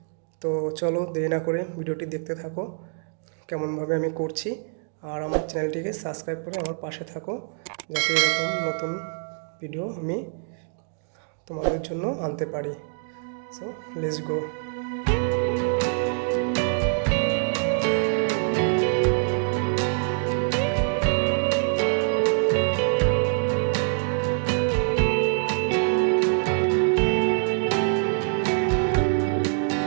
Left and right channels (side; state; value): left; silent; 62 dB below the other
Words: তো চলো দেরি না করে ভিডিওটি দেখতে থাকো কেমনভাবে আমি করছি। আর আমার চ্যানেলটিকে সাবস্ক্রাইব করে আমার পাশে থাকো, যাতে এরকম নতুন ভিডিও আমি তোমাদের জন্য আনতে পারি। So let's go.